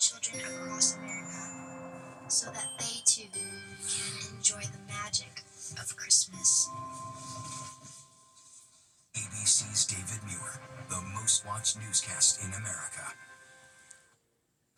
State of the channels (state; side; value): identical; both; correlation 1.00